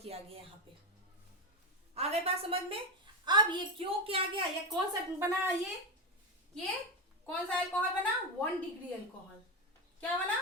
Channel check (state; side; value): normal; both; correlation 0.12